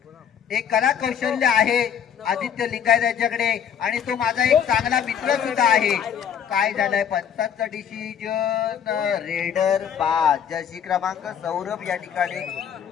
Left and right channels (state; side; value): quieter; right; 8.3 dB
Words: एक कला कौशल्य आहे आदित्य लिंगायत याच्याकडे आणि तो माझा एक चांगला मित्र सुद्धा आहे. काय झालंय, पंचांचं डिसिजन रेडर बाद. जर्सी क्रमांक सौरभ या ठिकाणी